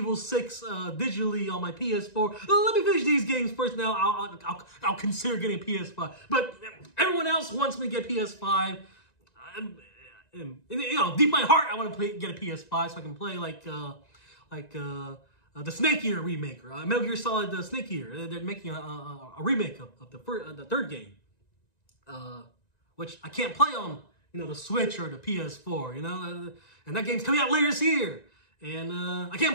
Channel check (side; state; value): right; late; 1.9 ms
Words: 6 digitally on my PS4. Let me finish these games first. Now I'll consider getting a PS5. But everyone else wants me to get PS5. You know, deep in my heart, I want to get a PS5 so I can play like the Snake Eater remake, Metal Gear Solid Snake Eater. They're making a remake of the third game, which I can't play on, you know, the Switch or the PS4, you know, and that game's coming out later this year, and I